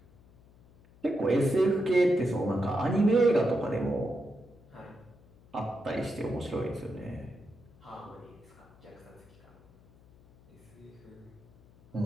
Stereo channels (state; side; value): noise; left; hum, 26 dB below the sound